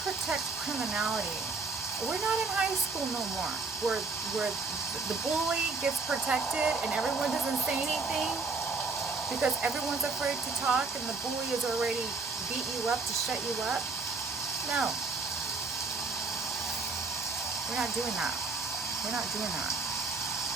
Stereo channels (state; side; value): quieter; left; 4.1 dB